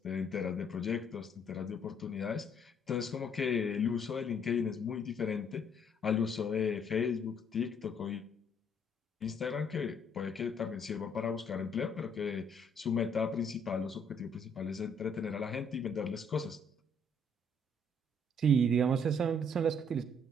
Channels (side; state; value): both; normal; correlation 0.66